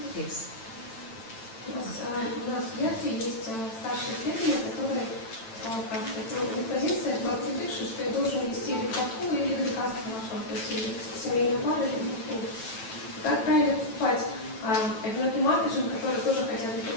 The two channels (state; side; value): late; right; 9.0 ms